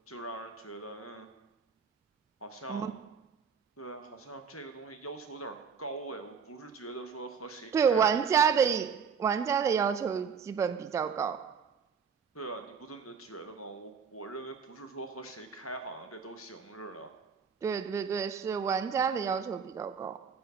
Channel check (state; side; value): quieter; left; 6.4 dB